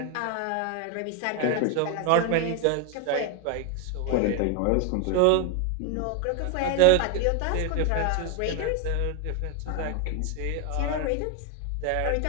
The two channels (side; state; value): both; different; correlation 0.01